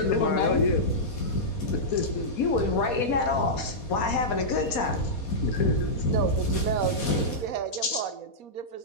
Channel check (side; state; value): right; late; 4.2 ms